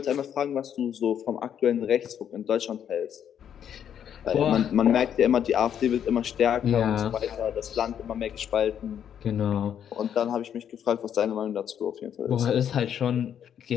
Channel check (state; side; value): quieter; right; 9.1 dB